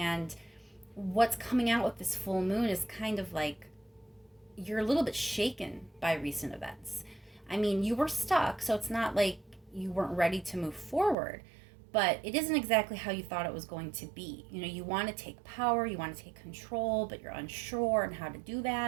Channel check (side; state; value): left; drops out; at 11.2 s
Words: what's coming out with this full moon is kind of like you're a little bit shaken by recent events. I mean, you were stuck, so it's not like you weren't ready to move forward, but it isn't exactly how you thought it was going to be. You want to take power, you want to take control, but you're unsure on how to do